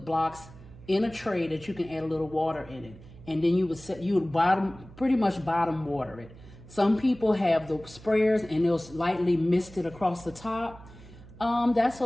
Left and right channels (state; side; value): noise; right; hum, 20 dB below the sound